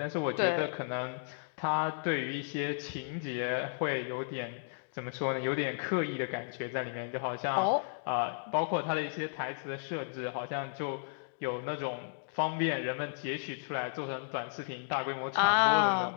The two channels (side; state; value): right; silent; digital silence